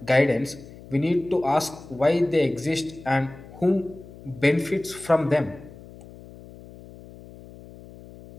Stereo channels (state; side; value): noise; left; hum, 18 dB below the sound